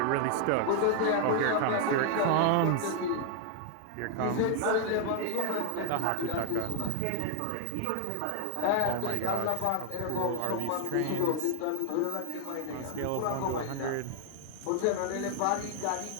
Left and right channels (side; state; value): both; different; correlation 0.00